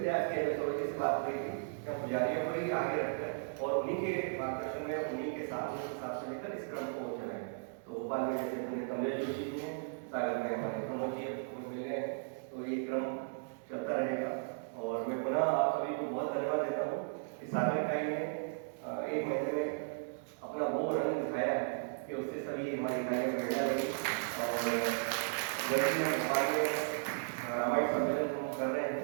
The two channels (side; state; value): left; silent; digital silence